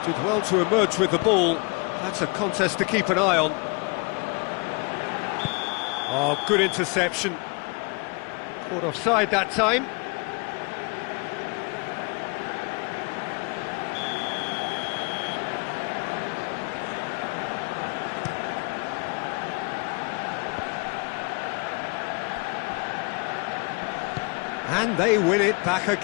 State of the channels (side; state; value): right; quieter; 31.1 dB